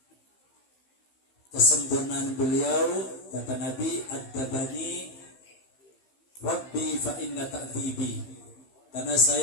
Kesempurnaan beliau, kata Nabi, "Ad-dabani Rabbi fa inna ta'tibi." Karena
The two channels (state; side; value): late; right; 15 ms